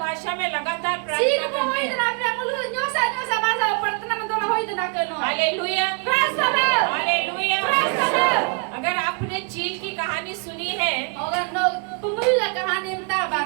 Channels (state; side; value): quieter; left; 35.4 dB